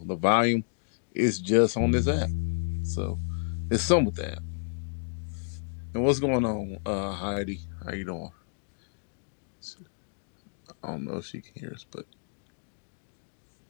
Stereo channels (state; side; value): silent; right; digital silence